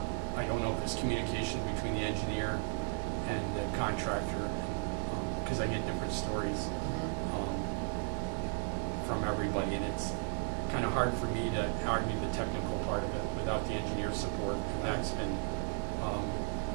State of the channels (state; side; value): silent; left; 54 dB below the other